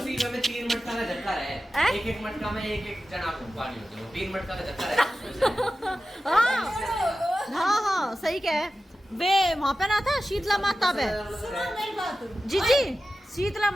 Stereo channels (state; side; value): normal; both; correlation 0.94